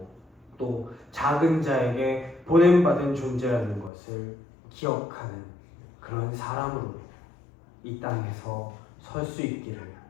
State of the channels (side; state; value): right; drops out; at 3.9 s